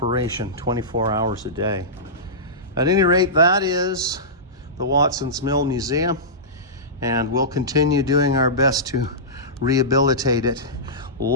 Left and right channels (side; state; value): both; normal; correlation -0.17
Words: 24 hours a day. At any rate, that is the Watson's Mill Museum, and we'll continue doing our best to rehabilitate it.